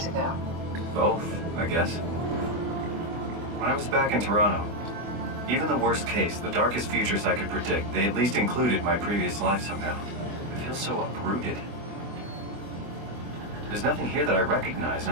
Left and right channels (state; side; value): late; left; 24 ms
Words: ago? Both, I guess. When I was back in Toronto, even the worst case, the darkest futures I could predict, they at least included my previous life somehow. I feel so uprooted. There's nothing here that I recognize,